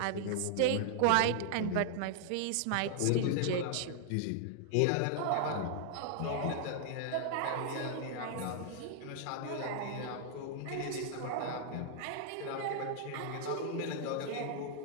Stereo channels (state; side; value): different; both; correlation 0.00